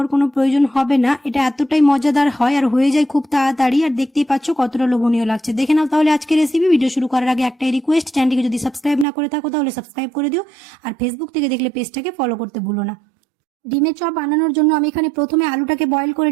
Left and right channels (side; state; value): left; drops out; at 9.1 s